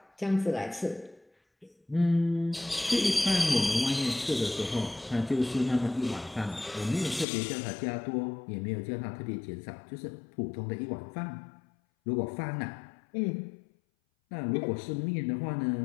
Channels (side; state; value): right; drops out; at 7.2 s